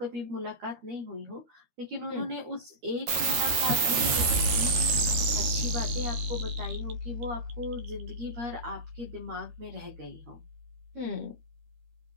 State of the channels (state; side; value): late; left; 13 ms